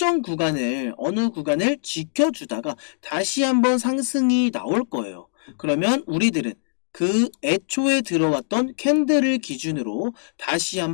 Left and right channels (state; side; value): silent; right; digital silence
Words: 구간을 어느 구간을 지켜주다가 다시 한번 상승이 나올 거예요. 그러면 우리들은 그 애초에 들어왔던 캔들을 기준으로 다시